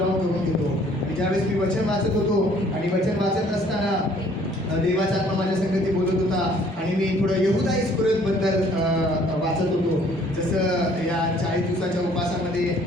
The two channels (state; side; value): normal; both; correlation 0.58